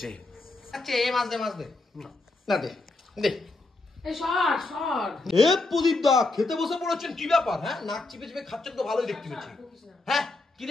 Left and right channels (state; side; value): quieter; right; 3.2 dB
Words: আচ্ছা এই মাছ দে, মাছ দে না, দে দে। প্রদীপ দা খেতে বসে পড়েছেন, কি ব্যাপার? হ্যাঁ, নাক চিপে চিপে খাচ্ছেন তো ভালোই দেখতে পাচ্ছি। হ্যাঁ, কি